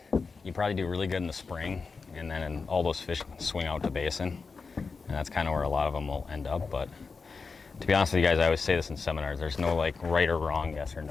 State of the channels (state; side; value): quieter; right; 4.7 dB